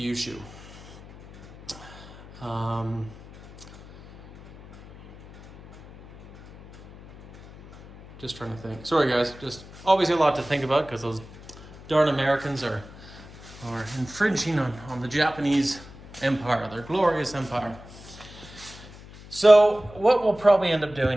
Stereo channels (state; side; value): noise; left; hum, 19 dB below the sound